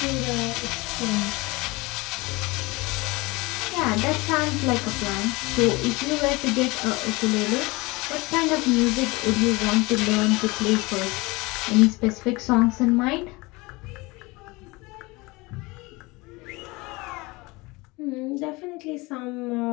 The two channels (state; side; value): quieter; right; 23.9 dB